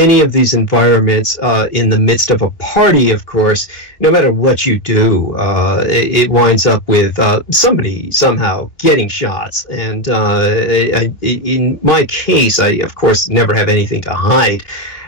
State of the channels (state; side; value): late; right; 3.0 ms